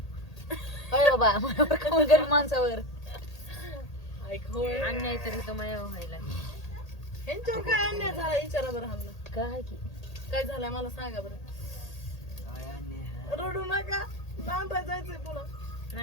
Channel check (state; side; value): late; right; 1.8 ms